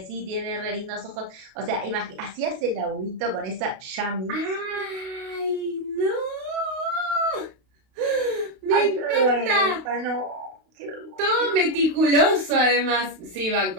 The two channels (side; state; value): left; late; 32 ms